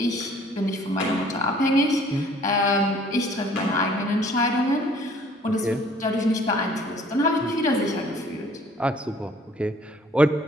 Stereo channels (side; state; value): both; normal; correlation 0.56